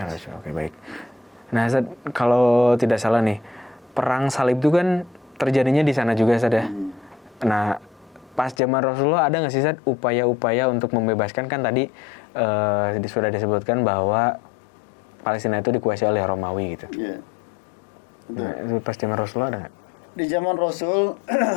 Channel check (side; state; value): right; drops out; at 8.6 s